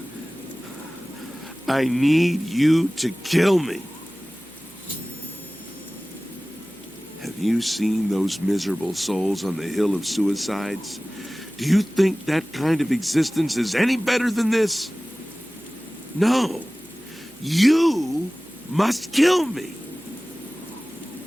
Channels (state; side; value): noise; right; hum, 28 dB below the sound